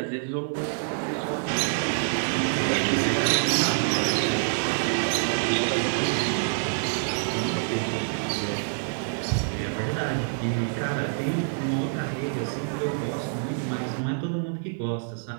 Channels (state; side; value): silent; left; digital silence